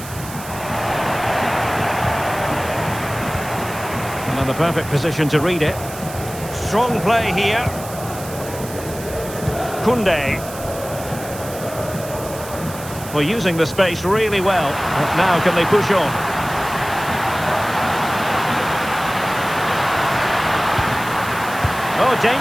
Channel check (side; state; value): right; noise; hiss, 14 dB below the sound